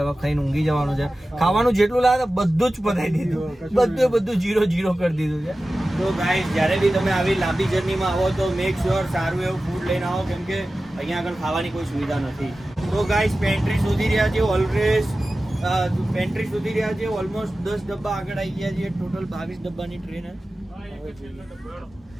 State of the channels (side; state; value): both; normal; correlation 0.95